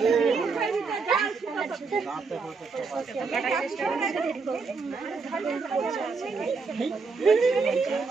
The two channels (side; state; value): left; quieter; 4.6 dB